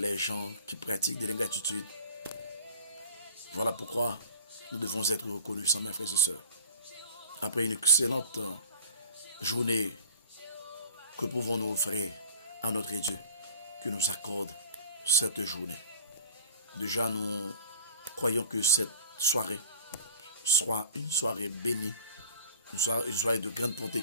gens qui pratiquent de l'ingratitude. Voilà pourquoi nous devons être reconnaissants, mes frères et sœurs. Après une excellente journée, que pouvons-nous offrir à notre Dieu qui nous accorde cette journée? Déjà, nous croyons que cette soirée soit une soirée bénie, une soirée de grande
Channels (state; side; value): inverted; both; correlation -0.44